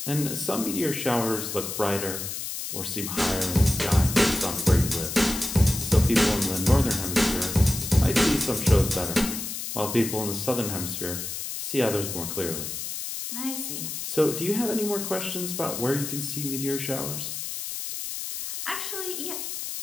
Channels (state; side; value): noise; left; hiss, 6 dB below the sound